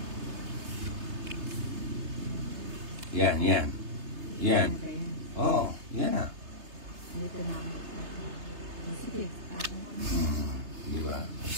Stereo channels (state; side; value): late; left; 3.3 ms